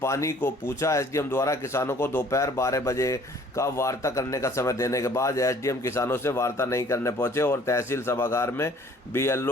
पानी को पूछा। एसडीएम द्वारा किसानों को दोपहर 12 बजे का वार्ता करने का समय देने के बाद एसडीएम किसानों से वार्ता नहीं करने पहुंचे और तहसील सभागार में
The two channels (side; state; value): both; normal; correlation 0.55